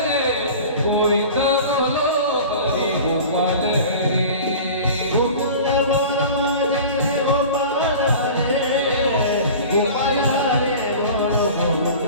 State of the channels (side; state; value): both; inverted; correlation -0.38